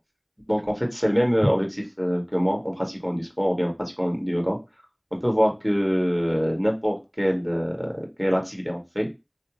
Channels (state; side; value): identical; both; correlation 1.00